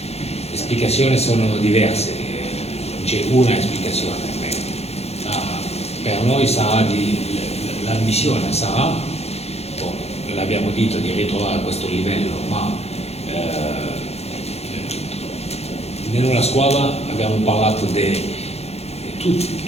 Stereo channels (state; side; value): late; right; 0.30 ms